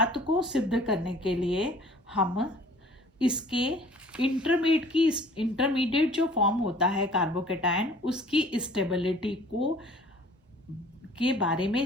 को सिद्ध करने के लिए हम इसके इंटरमीडिएट जो फॉर्म होता है कार्बोकेटायन, उसकी स्टेबिलिटी को के बारे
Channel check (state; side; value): normal; both; correlation 0.51